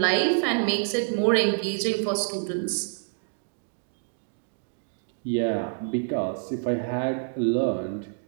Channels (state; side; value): silent; left; digital silence